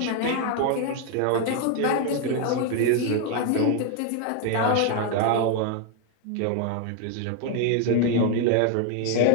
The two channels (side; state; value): both; different; correlation 0.01